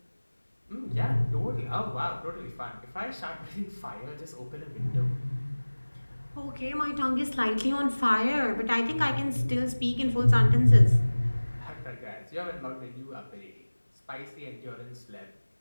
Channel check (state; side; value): inverted; both; correlation -1.00